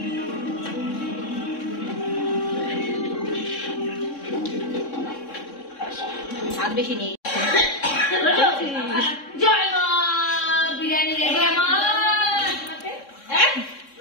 স্বাদ বেশি নেই জয় মা বিরিয়ানি রেডি আমার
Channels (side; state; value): right; late; 3.6 ms